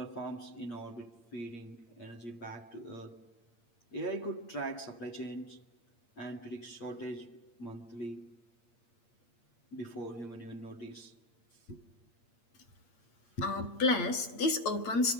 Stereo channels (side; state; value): right; late; 8.6 ms